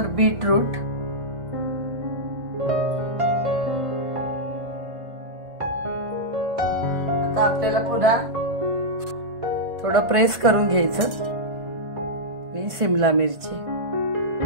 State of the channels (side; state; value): left; late; 1.5 ms